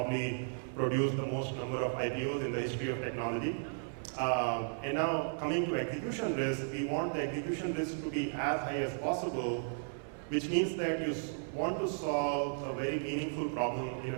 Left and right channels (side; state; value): left; silent; 55 dB below the other